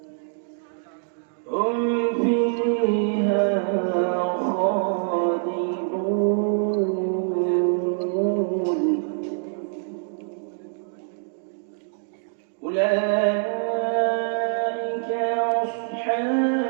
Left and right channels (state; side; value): silent; left; digital silence